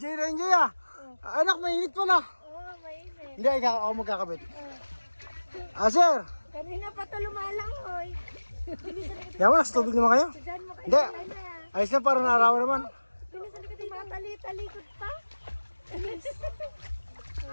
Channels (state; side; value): inverted; both; correlation -1.00